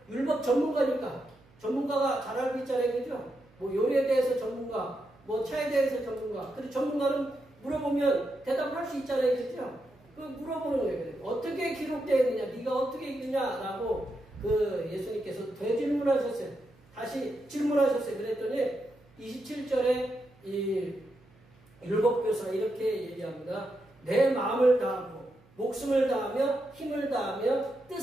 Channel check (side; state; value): right; noise; hum, 29 dB below the sound